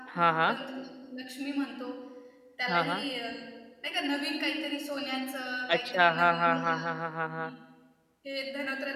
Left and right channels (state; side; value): identical; both; correlation 1.00